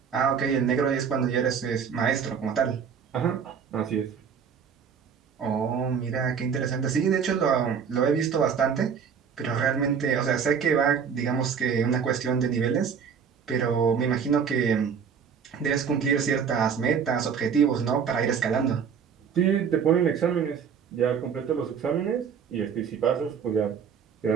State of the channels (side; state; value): left; quieter; 6.9 dB